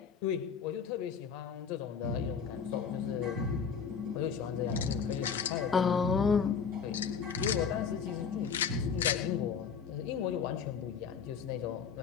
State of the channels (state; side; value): quieter; right; 6.5 dB